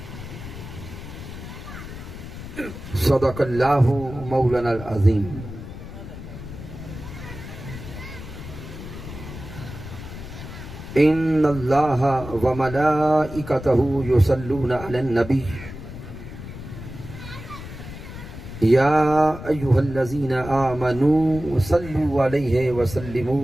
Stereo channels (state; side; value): noise; left; rumble, 11 dB below the sound